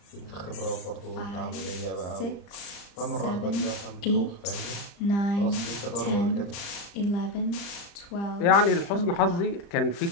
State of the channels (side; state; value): right; late; 35 ms